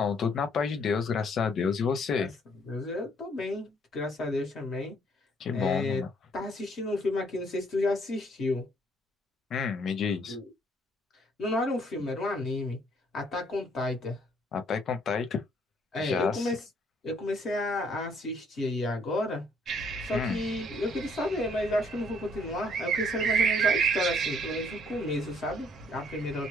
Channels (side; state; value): both; normal; correlation 0.64